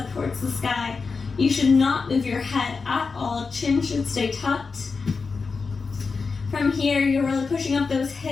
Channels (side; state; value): right; quieter; 4.7 dB